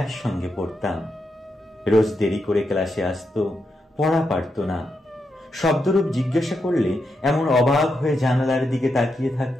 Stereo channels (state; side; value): normal; both; correlation 0.84